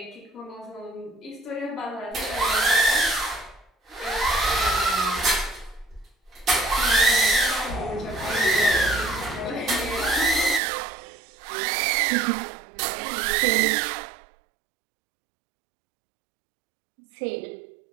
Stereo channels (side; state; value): left; drops out; at 10.6 s